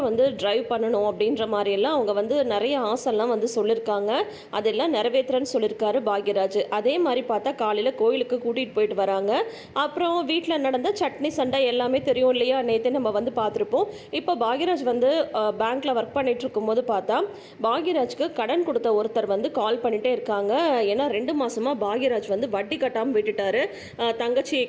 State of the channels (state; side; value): identical; both; correlation 1.00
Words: ட்ரைவ் பண்ணணும் அப்படின்ற மாதிரியெல்லாம் அவங்க நிறைய ஆசைலாம் சொல்லியிருக்காங்க. அதெல்லாம் நிறைவேற்றுறேன்னு சொல்லியிருக்காரு பாக்யராஜ். அதே மாதிரி பார்த்தா காலையில் கோயிலுக்கு கூட்டிகிட்டு போயிட்டு வராங்க. அப்புறம் வீட்டில் நடந்த சட்னி சண்டை எல்லாமே தெரியும் இல்லையா? நேற்று நம்ம பார்த்துருப்போம். இப்போ பாக்யராஜ் பேங்க்கில் ஒர்க் பண்ணிட்டு இருக்கும்போது பார்த்தா பாக்யராஜ்க்கு கடன் கொடுத்த ஒருத்தர் கால் பண்ணிகிட்டே இருக்காங்க. ஏன்னா 2 மாதமாக பாக்யராஜ் வட்டி கட்டாமல் விட்டுட்டாரு. தங்கச்சி